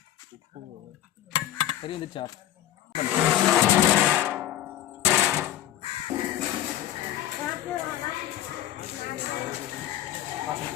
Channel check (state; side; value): quieter; right; 12.8 dB